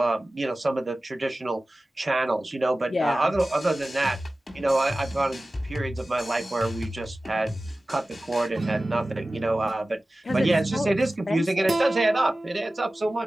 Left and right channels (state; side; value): normal; both; correlation 0.96